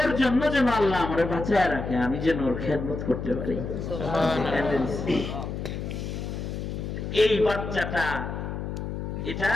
জন্য যেন আল্লাহ আমারে বাঁচায় রাখে, আমি যেন ওর খেদমত করতে পারি। এই বাচ্চাটা এটা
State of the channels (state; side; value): noise; left; hum, 5 dB below the sound